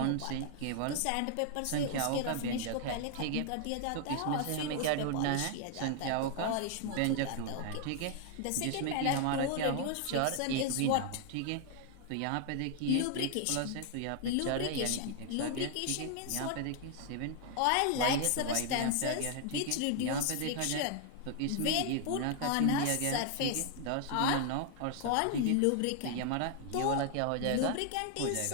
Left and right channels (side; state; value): both; different; correlation 0.00